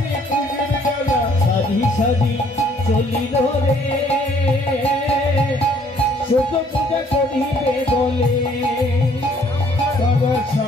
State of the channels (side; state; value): both; normal; correlation 0.62